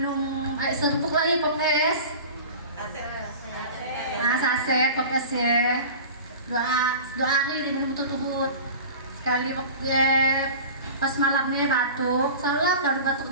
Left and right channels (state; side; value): inverted; both; correlation -0.36